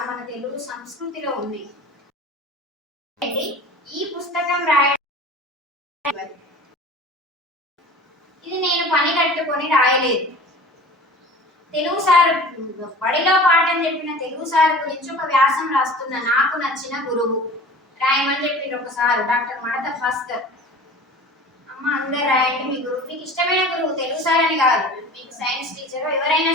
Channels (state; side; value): normal; both; correlation 0.40